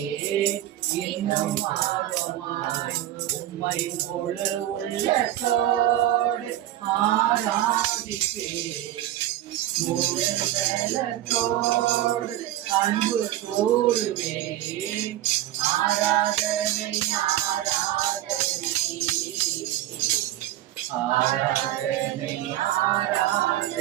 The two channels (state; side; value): quieter; left; 13.6 dB